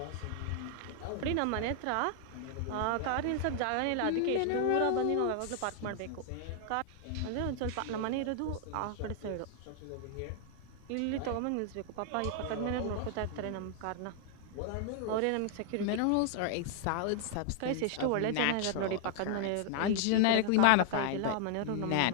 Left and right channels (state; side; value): different; both; correlation 0.00